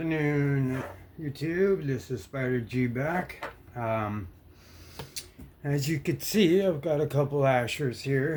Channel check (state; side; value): identical; both; correlation 1.00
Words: YouTube. This is Spider G back. As you can see, I've got a couple ashers